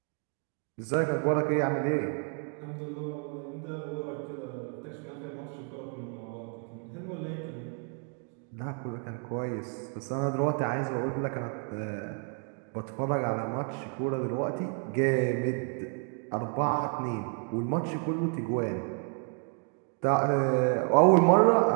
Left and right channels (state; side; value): quieter; left; 39.6 dB